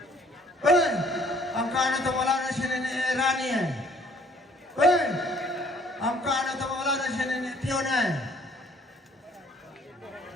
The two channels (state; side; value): normal; both; correlation 0.58